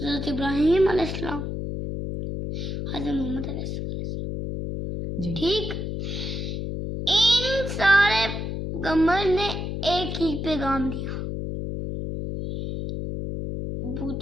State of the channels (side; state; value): left; noise; hum, 4 dB below the sound